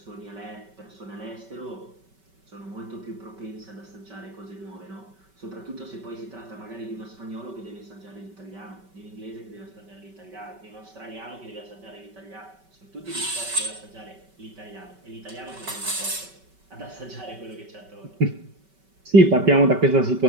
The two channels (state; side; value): late; left; 5.2 ms